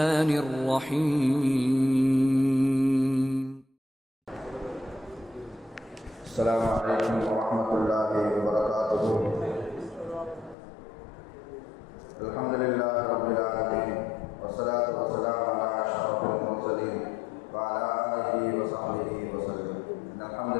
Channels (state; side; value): drops out; right; at 10.6 s